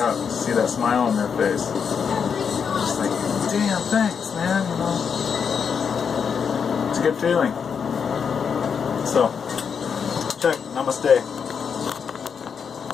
to see that smile on their face. Just like, damn, thanks, man, you know. It's a good feeling. So, check, namaste.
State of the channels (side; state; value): right; quieter; 6.6 dB